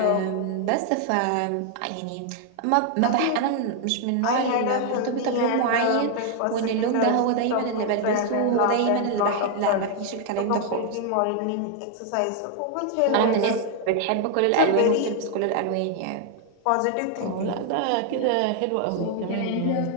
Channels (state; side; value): different; both; correlation 0.00